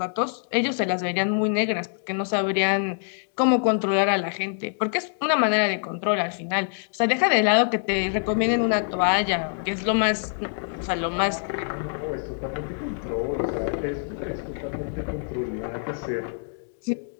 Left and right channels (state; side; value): silent; right; digital silence